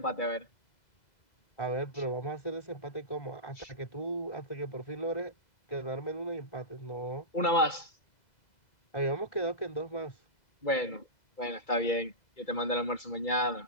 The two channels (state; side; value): late; right; 2.0 ms